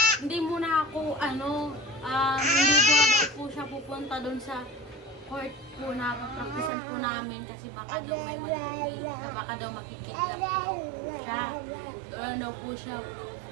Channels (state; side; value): drops out; left; at 6.7 s